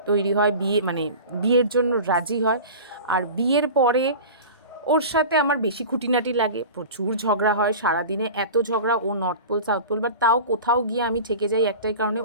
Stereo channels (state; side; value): inverted; both; correlation -0.34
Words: তৈরি হয় বিয়ে, মানে বিয়ের জন্য রাজি হয়। আর বিয়ের পরে ওর সাথে আমার বেশি খুঁটিনাটি লাগে, প্রচুর ঝগড়া হয় সারাদিনে, এত ঝগড়া, ও north pole south pole, but তাও কোথাও গিয়ে আমি ঠেকে যাই একটাই কারণে,